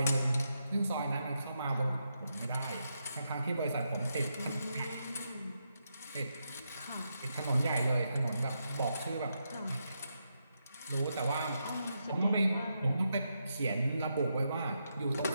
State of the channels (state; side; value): inverted; both; correlation -0.83